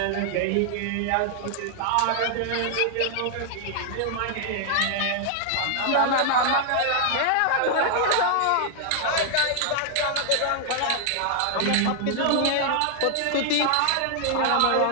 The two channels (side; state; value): both; different; correlation -0.01